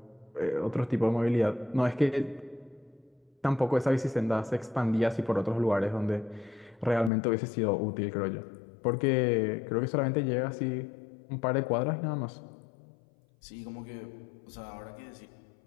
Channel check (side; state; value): right; drops out; at 7.1 s